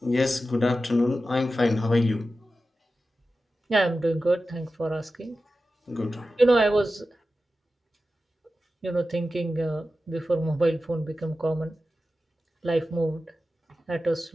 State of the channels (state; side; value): normal; both; correlation 0.93